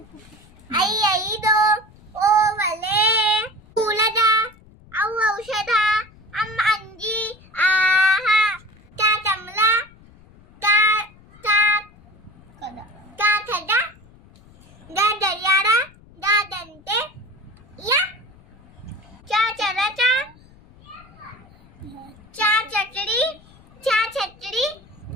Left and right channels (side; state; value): left; noise; rumble, 25 dB below the sound